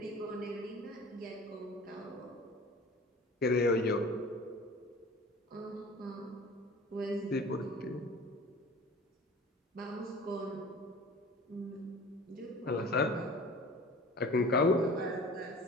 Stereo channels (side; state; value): both; normal; correlation 0.42